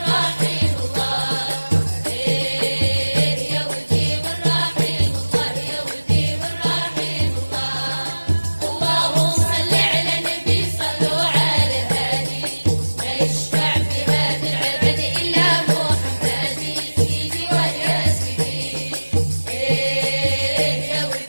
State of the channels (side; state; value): both; inverted; correlation -1.00